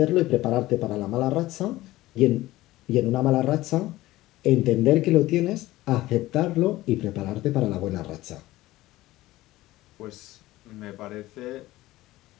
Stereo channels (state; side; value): quieter; right; 17.2 dB